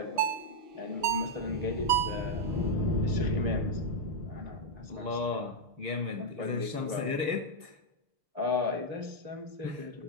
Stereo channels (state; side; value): late; left; 6.6 ms